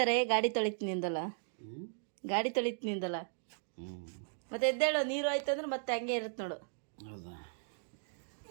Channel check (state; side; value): silent; left; digital silence